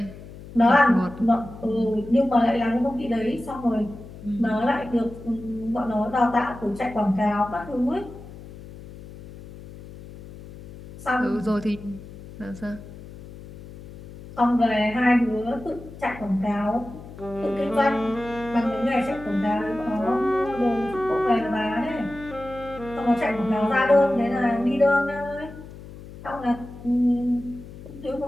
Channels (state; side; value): noise; left; hum, 16 dB below the sound